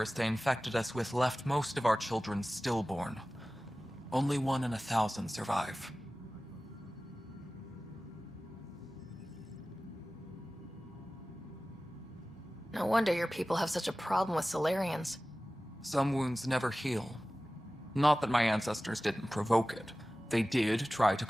they infected us with left most of our children stillborn. Only 1 in 1,000 survive. No wonder your people have such a problem with Solarians. Some wounds never heal. Not that my ancestors didn't provoke it. They did try to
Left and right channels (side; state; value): both; normal; correlation 0.97